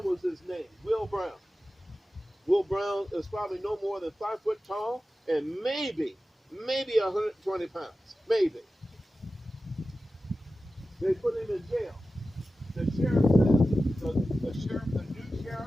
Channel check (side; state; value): both; normal; correlation 0.94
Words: was his name, Will Brown. Will Brown is probably no more than 5 foot tall and maybe 120 pounds. Maybe. They put him in jail. The sheriff says, the new sheriff